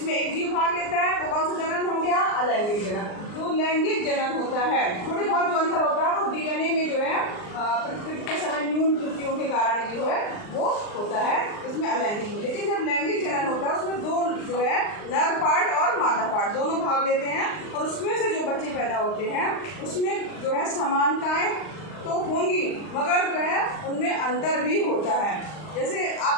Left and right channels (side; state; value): right; late; 39 ms